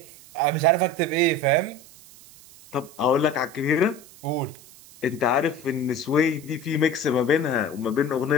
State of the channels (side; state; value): right; noise; hiss, 22 dB below the sound